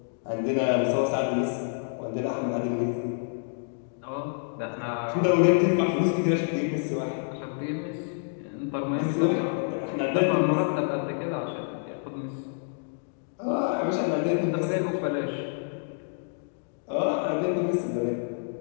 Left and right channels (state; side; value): silent; right; digital silence